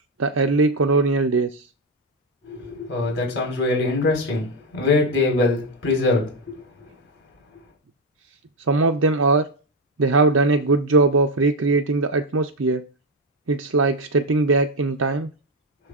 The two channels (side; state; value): both; normal; correlation 0.07